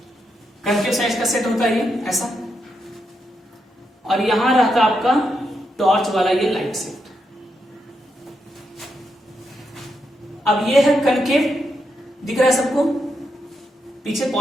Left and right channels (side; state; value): both; normal; correlation 0.83